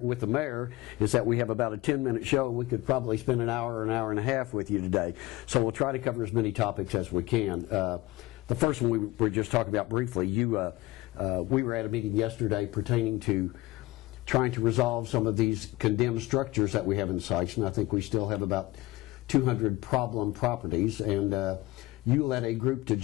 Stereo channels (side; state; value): right; quieter; 19.0 dB